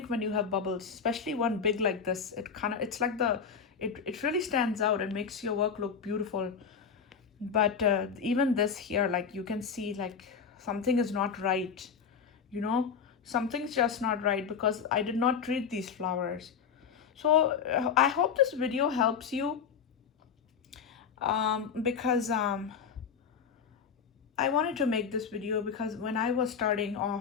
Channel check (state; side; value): quieter; right; 6.6 dB